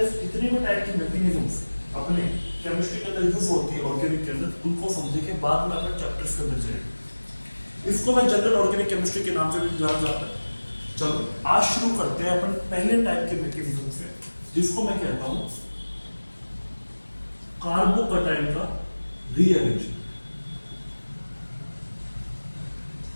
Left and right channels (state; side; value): inverted; both; correlation -1.00